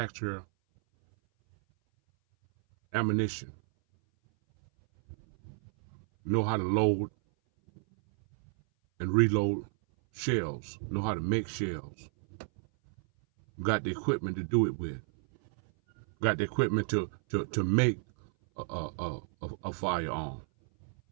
ammunition, know how to load and reload shells, know how to make shells, got the equipment to do it with, got the equipment to make a firearm?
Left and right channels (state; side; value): silent; left; 57 dB below the other